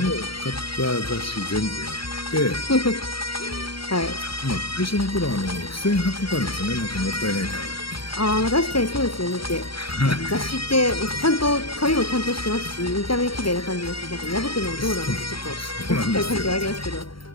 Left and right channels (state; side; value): late; right; 0.74 ms